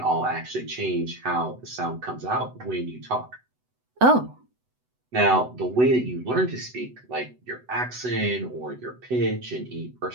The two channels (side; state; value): left; late; 8.0 ms